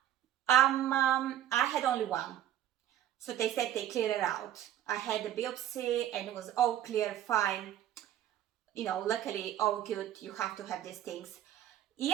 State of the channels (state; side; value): quieter; left; 11.7 dB